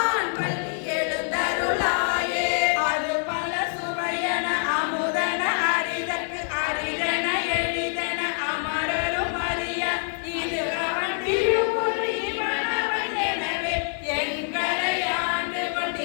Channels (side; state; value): right; silent; 58 dB below the other